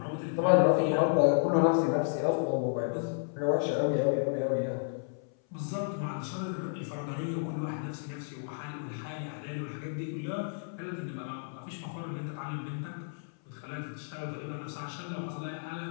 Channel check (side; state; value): right; silent; 56 dB below the other